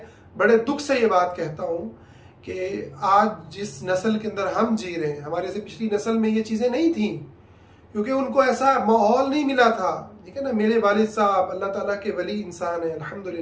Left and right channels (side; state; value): both; identical; correlation 1.00